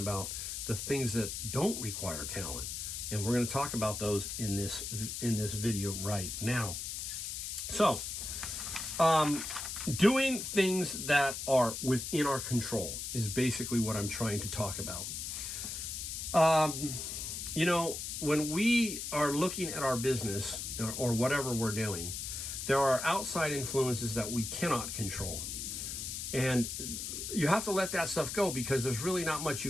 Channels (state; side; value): noise; left; hiss, 5 dB below the sound